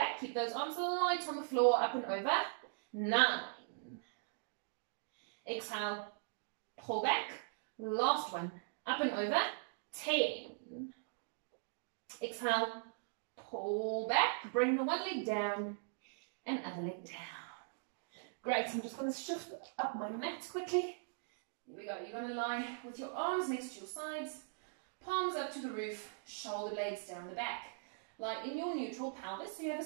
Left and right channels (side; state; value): left; silent; digital silence